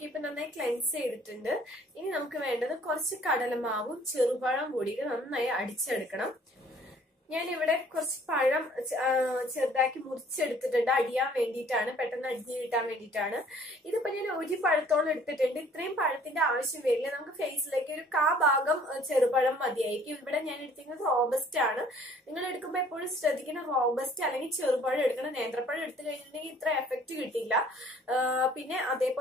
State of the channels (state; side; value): normal; both; correlation 0.56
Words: ഇപ്പൊ നന്നായി ക്ലെൻസ് ചെയ്തിട്ടുണ്ട്. ഇനി നമുക്ക് വേണ്ടത് കുറച്ച് കടലമാവും ചെറുപഴം കൂടിയിട്ട് നന്നായി അടിച്ചെടുക്കണം. ഞാനിവിടെ കുറച്ച് പഴം ചെറുതാക്കി മുറിച്ചെടുത്തിട്ടുണ്ട്. അടിയാൻ വേണ്ടിയിട്ടാണ്, പെട്ടെന്ന് അടിഞ്ഞു കിട്ടാൻ വേണ്ടിയിട്ടാണ്. ഇതിപ്പോ ഞാൻ ഒരു പഴത്തോളം എടുത്തിട്ടുണ്ട്. ഇത്രയും പഴത്തിന്റെ ആവശ്യം വരില്ല. നമുക്ക് ഫേസിലേക്ക് ഒരു ഭാഗം ചെറുപഴം മതിയായിരിക്കും. ഇവിടെ ഞാൻ എടുത്തിരിക്കുന്നത് റോബസ്റ്റ് ആണ്. നിങ്ങൾ എടുക്കുമ്പോൾ എപ്പോഴും ശ്രദ്ധിക്കണം, റോബസ്റ്റ് അല്ലെങ്കിൽ ചെറുപഴം എടുക്കണം. നേന്ത്രപ്പഴം എടുത്തു കഴിഞ്ഞിട്ടുണ്ടെങ്കിൽ ഇത്ര എഫക്റ്റ് കിട്ടില്ല. പിന്നെ